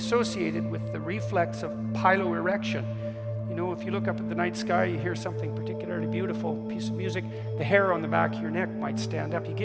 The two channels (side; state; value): both; identical; correlation 1.00